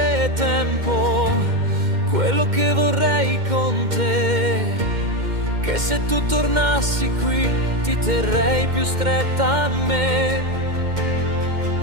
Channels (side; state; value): left; late; 2.1 ms